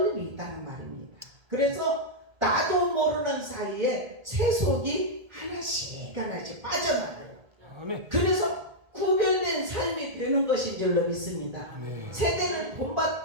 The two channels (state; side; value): late; left; 1.8 ms